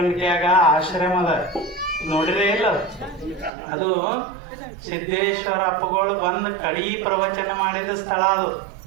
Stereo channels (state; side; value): drops out; left; at 3.5 s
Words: ಆಶ್ರಮದ ನೋಡಿರೇ ಇಲ್ಲ, ಅದು ಸಿದ್ದೇಶ್ವರ ಅಪ್ಪಗಳು ಬಂದು ಕಡೀ ಪ್ರವಚನ ಮಾಡಿದ ಸ್ಥಳ. ಅದು